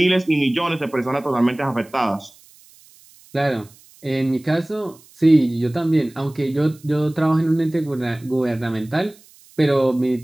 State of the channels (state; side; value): noise; right; hiss, 27 dB below the sound